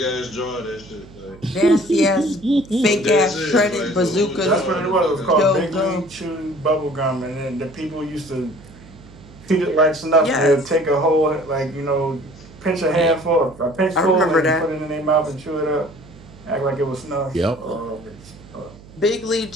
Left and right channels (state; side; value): noise; right; hum, 21 dB below the sound